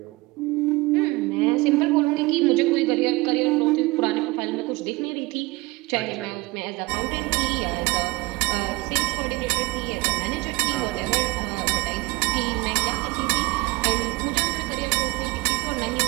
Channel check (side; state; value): left; quieter; 22.7 dB